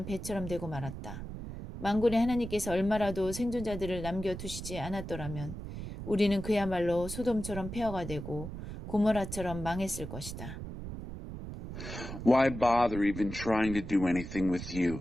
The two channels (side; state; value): right; noise; rumble, 9 dB below the sound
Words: 배처럼 되고 말았다. 만군의 하나님께서 얼마라도 생존자들을 남겨두시지 않았더라면 우리는 그야말로 소돔처럼 폐허가 되고 고모라처럼 망했을 것이다. Why bother even trying to do anything with you